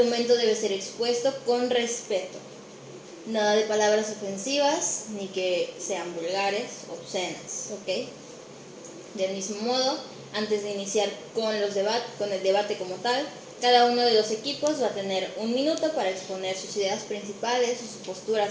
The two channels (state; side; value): identical; both; correlation 1.00